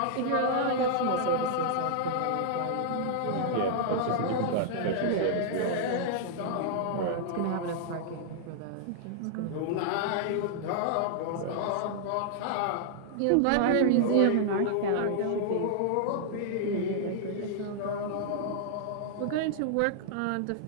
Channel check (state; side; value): different; both; correlation -0.01